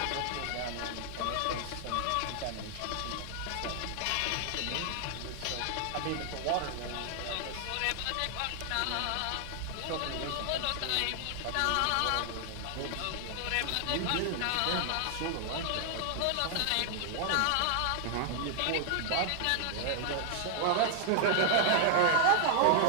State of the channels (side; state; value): both; different; correlation 0.00